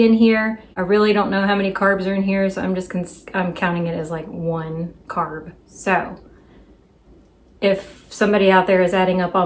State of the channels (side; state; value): both; identical; correlation 1.00